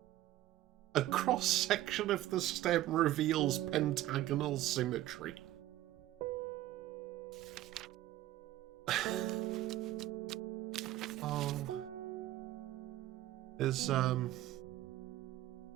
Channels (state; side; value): quieter; left; 14.6 dB